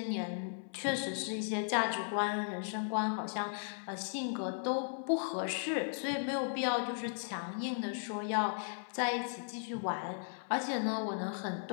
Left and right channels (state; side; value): silent; right; 53 dB below the other